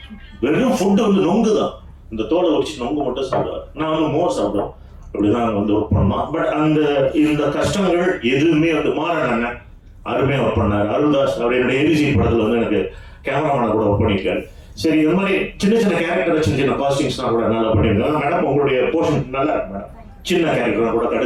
வெறும் ஃபுட்டு வந்து நொங்கு தான், இந்த தோலை வச்சு நொங்கு மட்டும் சாப்பிடுவார். நான் வந்து மோர் சாப்பிடுவேன். அப்படிதான் வந்து ஒர்க் பண்ணோம். பட் இந்த கஷ்டங்கள் எதுவுமே வந்து மாறனாங்க அருமையாக ஒர்க் பண்ணார். அருள்தாஸ் அவர் என்னுடைய ஏபிசி படத்தில் வந்து எனக்கு கேமராமேனை கூட ஒர்க் பண்ணியிருக்காரு. சரி, இந்த மாதிரி சின்ன சின்ன கேரக்டர், சின்ன காஸ்டிங்ஸ்லாம் கூட நல்லா பண்ணியிருக்காங்க. மேடம் உங்களுடைய போர்ஷன் நல்லா இருக்கு மேடம். சின்ன கேரக்டர் கூட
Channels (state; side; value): identical; both; correlation 1.00